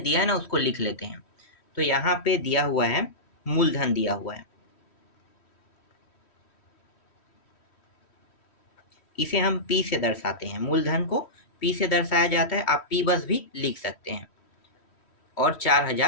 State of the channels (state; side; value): late; right; 3.1 ms